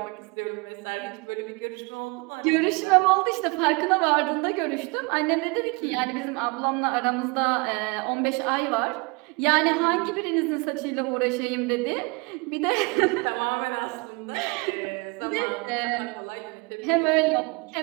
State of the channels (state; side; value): quieter; left; 29.4 dB